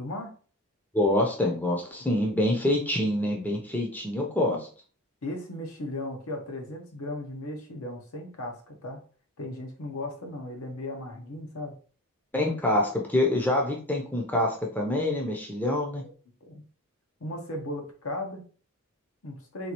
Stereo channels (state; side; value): normal; both; correlation 0.33